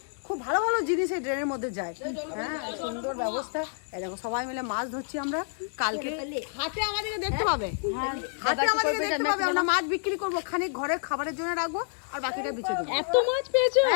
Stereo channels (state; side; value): silent; right; 59 dB below the other